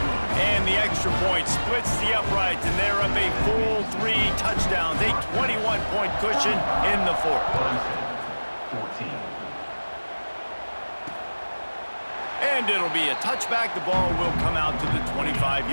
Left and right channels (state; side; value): inverted; both; correlation -1.00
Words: And the extra point splits the uprights, and they're up a full 3 touchdowns, a 21-point cushion in the fourth. 14. And it'll be a touchback. The ball will come out to the